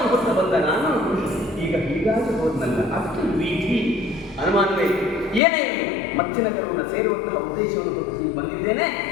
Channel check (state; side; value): drops out; right; at 5.4 s